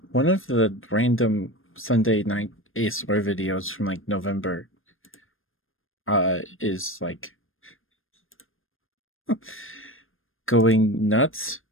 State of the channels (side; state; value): right; late; 0.60 ms